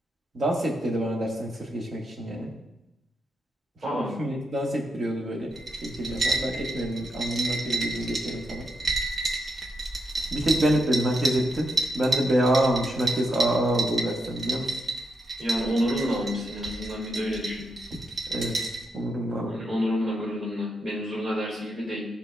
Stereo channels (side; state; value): both; normal; correlation 0.82